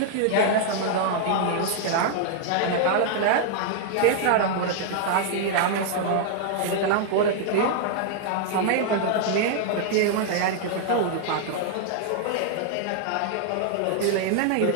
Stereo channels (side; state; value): both; different; correlation -0.01